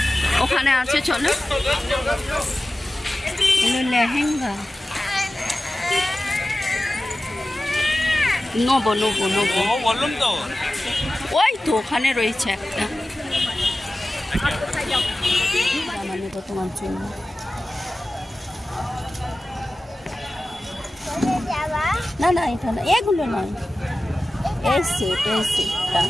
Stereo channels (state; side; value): normal; both; correlation 0.95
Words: ওখানে আছে চলো লেহেঙ্গা নেবো বললাম তো ওই তো ওখানে রয়েছে একটা জামা নেবো তোমার জন্য না এটা না এগুলো নয় এই সেটটা